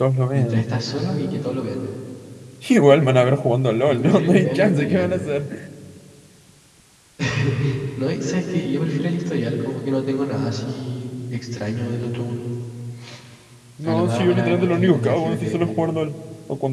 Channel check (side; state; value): both; identical; correlation 1.00